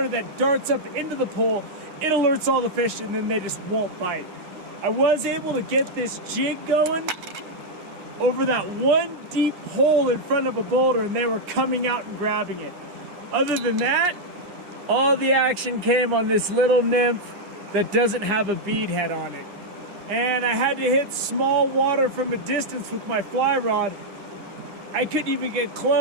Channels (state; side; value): late; left; 9.8 ms